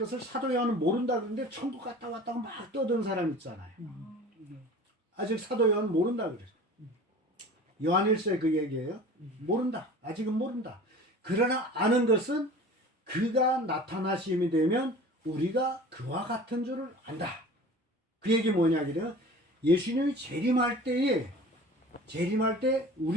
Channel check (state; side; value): normal; both; correlation 0.41